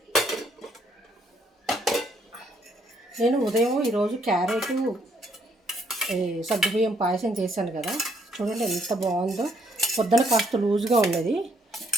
నేను ఉదయం ఈరోజు క్యారెట్ సగ్గుబియ్యం పాయసం చేశాను కదా. చూడండి ఎంత బాగుందో. పొద్దున కాస్త లూజ్గా ఉన్నది,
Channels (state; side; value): normal; both; correlation 0.71